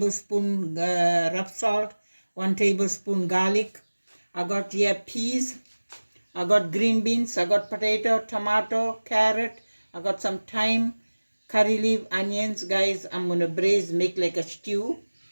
rough salt, 1 tablespoon garlic. I got here peas. I got green beans, I got potato, tomato, carrot, I got some thyme, curry leaf, onions. Guys, I'm going to braise, make like a stew.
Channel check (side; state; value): both; inverted; correlation -1.00